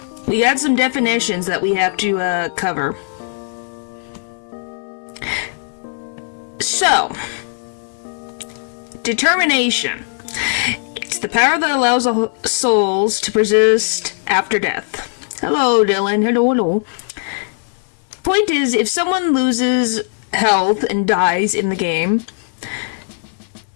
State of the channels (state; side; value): silent; right; digital silence